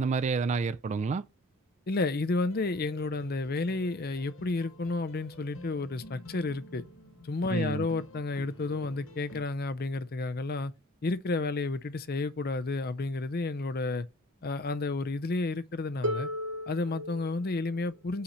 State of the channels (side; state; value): both; normal; correlation 0.50